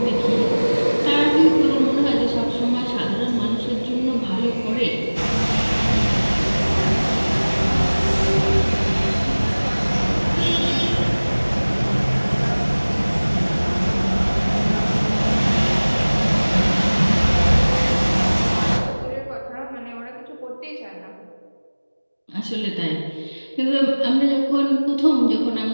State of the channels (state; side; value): inverted; both; correlation -1.00